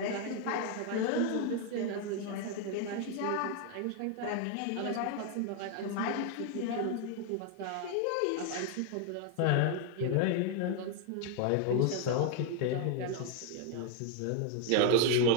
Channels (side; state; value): both; different; correlation 0.01